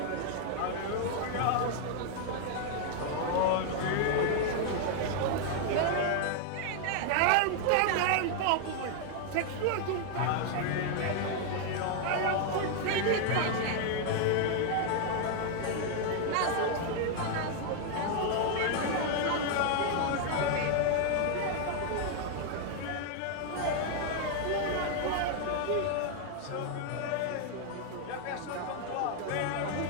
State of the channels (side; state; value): both; different; correlation 0.00